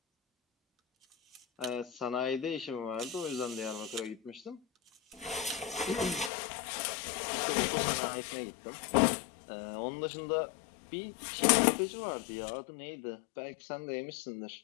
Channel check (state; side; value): drops out; right; at 6.3 s